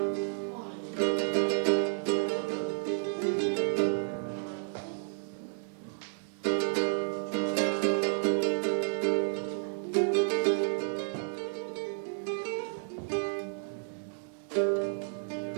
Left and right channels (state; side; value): silent; left; digital silence